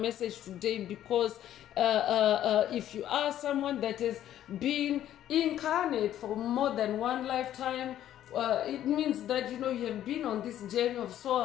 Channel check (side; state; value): right; quieter; 11.8 dB